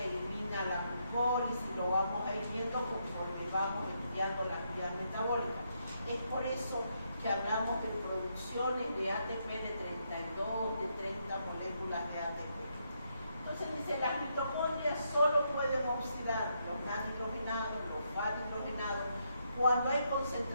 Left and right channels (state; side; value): inverted; both; correlation -0.78